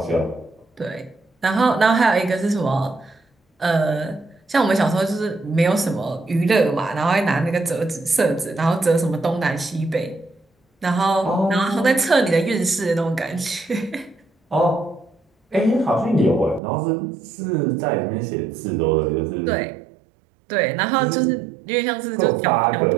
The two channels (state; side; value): drops out; left; at 16.6 s